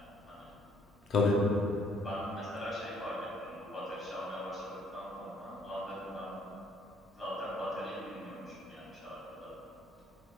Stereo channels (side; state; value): both; normal; correlation 0.64